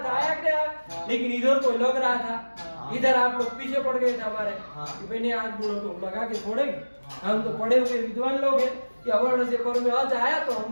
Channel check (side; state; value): both; inverted; correlation -1.00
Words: आया क्या? लेकिन इधर कोई लग रहा था, इधर आप लोग पीछे पड़ गए थे हमारे कि मैंने आज गुणों को लगा के छोड़ेंगे, हम तो पढ़े हुए विद्वान लोग हैं कि अवर्ण से पर में आज आया तो